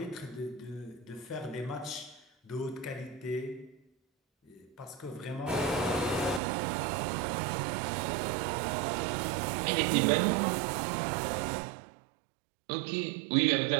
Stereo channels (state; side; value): drops out; left; at 6.4 s